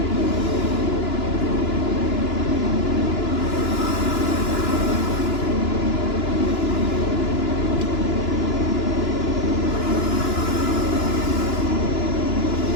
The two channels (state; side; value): late; right; 2.9 ms